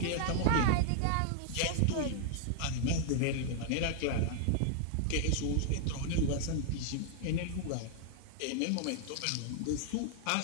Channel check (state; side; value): different; both; correlation 0.00